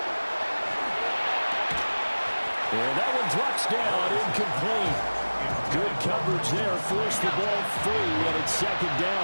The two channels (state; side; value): inverted; both; correlation -1.00